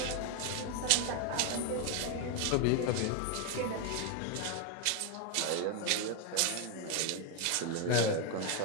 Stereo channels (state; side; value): different; both; correlation 0.01